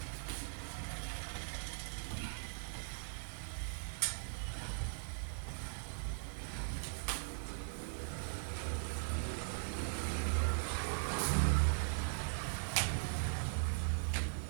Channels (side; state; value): left; silent; digital silence